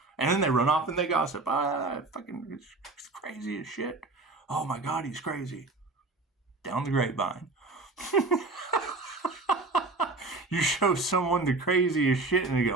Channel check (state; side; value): quieter; left; 3.4 dB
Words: And then they run off and they gossip. Fucking it's crazy as shit. Oh my God, he's crazy. Down the grapevine. You show someone the craziest shit and they